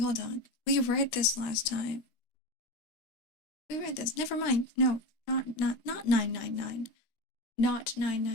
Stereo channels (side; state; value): right; late; 13 ms